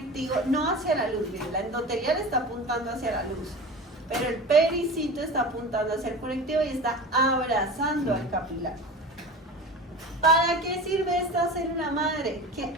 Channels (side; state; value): both; normal; correlation 0.32